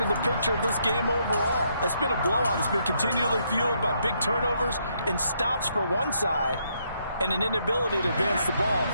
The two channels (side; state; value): both; inverted; correlation -0.74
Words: the picture of this game overall. It's been a blowout. It's been continually fueled by big turnovers and stops for one side and an inability to advance the ball